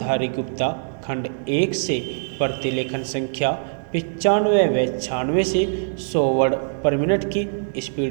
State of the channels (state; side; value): silent; left; digital silence